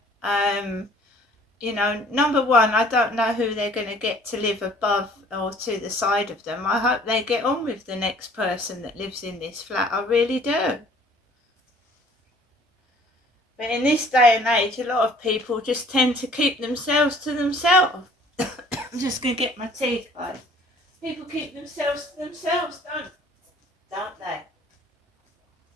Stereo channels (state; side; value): normal; both; correlation 0.54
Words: you know, number one, I don't know who they're going to get to live above or to the side of them. I hope they get on with the next person that lives in this flat. I really do. But in this day and age, a lot of people just tend to keep themselves to themselves. I'm just going to get my teeth, guys. People keep themselves to themselves, don't they?